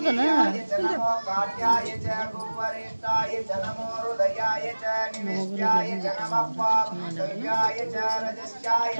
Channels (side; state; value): both; inverted; correlation -1.00